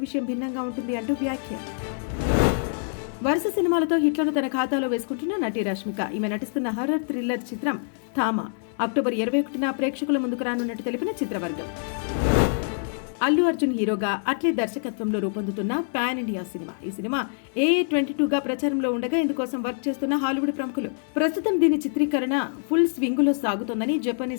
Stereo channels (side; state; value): right; silent; digital silence